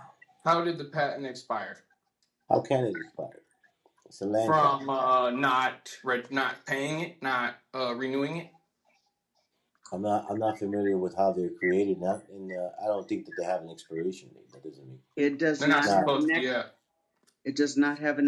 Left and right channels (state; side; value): identical; both; correlation 1.00